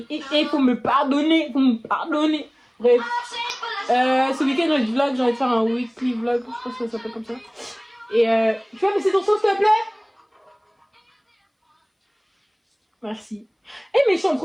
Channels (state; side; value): identical; both; correlation 1.00